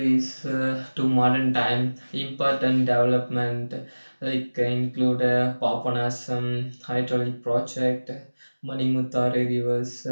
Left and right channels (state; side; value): inverted; both; correlation -1.00